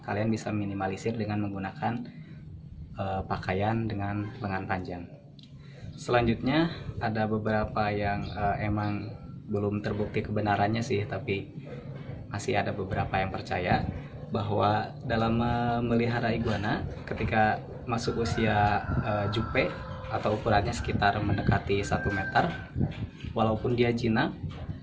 Kalian bisa minimalisir dengan menggunakan pakaian dengan lengan panjang. Selanjutnya ada beberapa yang emang belum terbukti kebenarannya sih, tapi masih ada beberapa yang percaya bahwa dalam memelihara iguana, ketika masuk usia jupe atau ukurannya sekitar mendekati 1 meter, walaupun dia jinak,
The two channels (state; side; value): identical; both; correlation 1.00